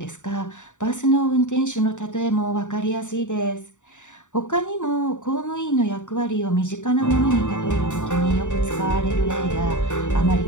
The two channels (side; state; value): right; late; 0.85 ms